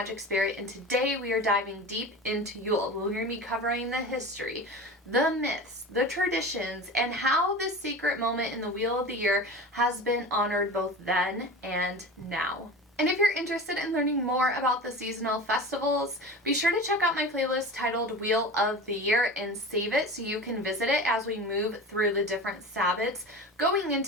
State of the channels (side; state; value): both; normal; correlation 0.33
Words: Spirit, and today we are diving deep into Yule. We're going to be covering the history, the myths, the traditions, and how this sacred moment in the Wheel of the Year has been honored both then and now. And if you're interested in learning more about the seasonal festivals, be sure to check out my playlist titled Wheel of the Year and save it so you can visit it as we move through the different Sabbats going